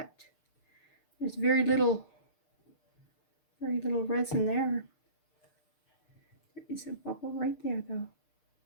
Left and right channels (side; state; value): right; late; 6.6 ms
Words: there's very little resin there. There is a bubble right there though.